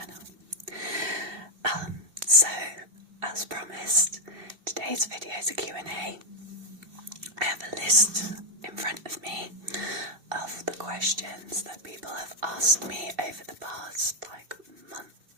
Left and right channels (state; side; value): late; left; 2.7 ms